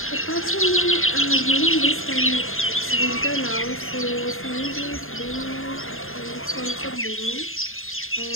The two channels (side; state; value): right; late; 0.60 ms